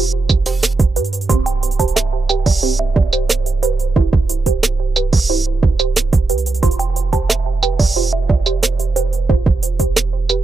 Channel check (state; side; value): quieter; left; 3.2 dB